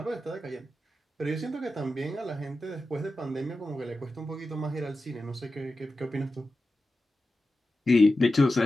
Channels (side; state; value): both; normal; correlation 0.92